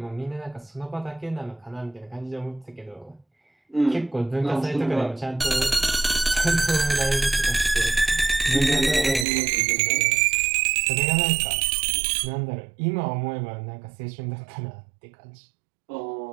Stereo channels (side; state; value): left; drops out; at 9.2 s